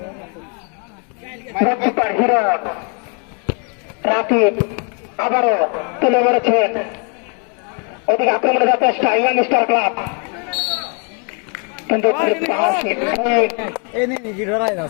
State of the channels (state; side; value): quieter; right; 38.3 dB